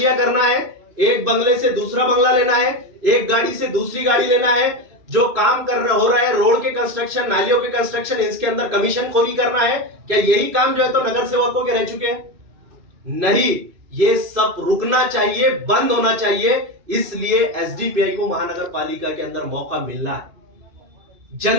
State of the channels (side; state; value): left; late; 2.6 ms